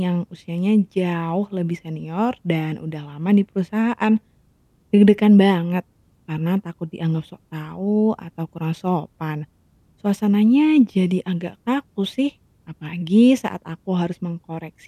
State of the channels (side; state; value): both; identical; correlation 1.00